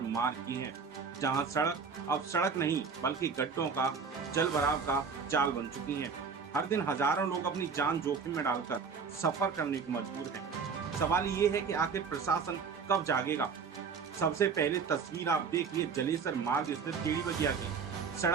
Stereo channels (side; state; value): left; quieter; 5.7 dB